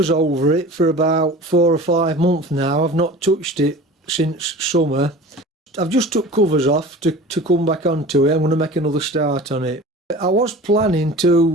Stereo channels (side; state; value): both; normal; correlation 0.39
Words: over it for about 4 or 5 months now. I've not touched it since summer. I've just took covers off to come back onto it. I'm going to make another start on it. I was planning